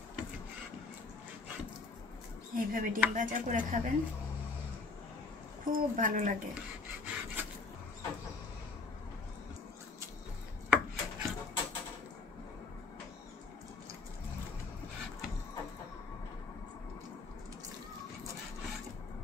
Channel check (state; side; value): quieter; right; 4.0 dB